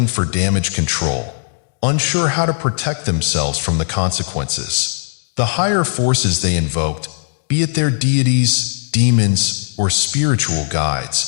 for damage control, unsure how to protect themselves from the consequences. The higher forces they invoked, be it their deities, demons, or spiritual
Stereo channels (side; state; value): right; silent; digital silence